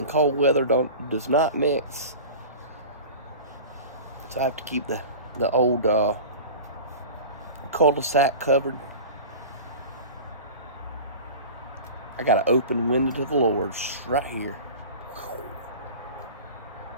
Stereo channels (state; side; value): inverted; both; correlation -0.35